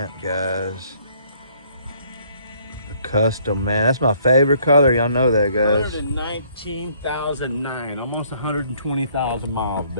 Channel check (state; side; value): inverted; both; correlation -0.63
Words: guys. The custom, man. That's my favorite color. Y'all know that, guys. 119,009. Almost 120,000 miles,